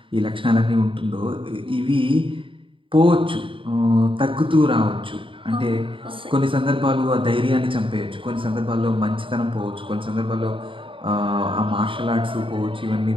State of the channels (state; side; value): late; left; 0.25 ms